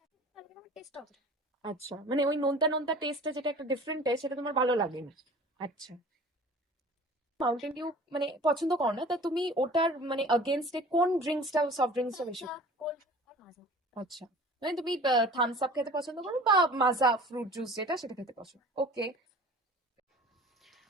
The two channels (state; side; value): normal; both; correlation 0.44